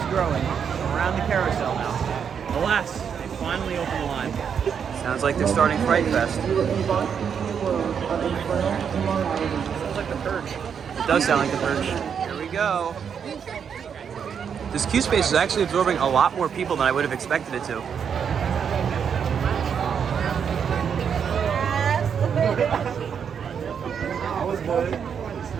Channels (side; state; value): left; quieter; 7.3 dB